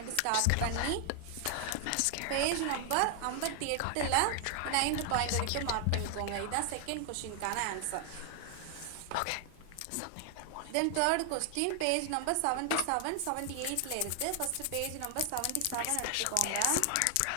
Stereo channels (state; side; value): different; both; correlation 0.00